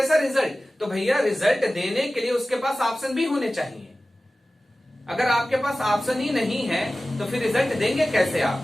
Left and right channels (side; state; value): both; normal; correlation 0.96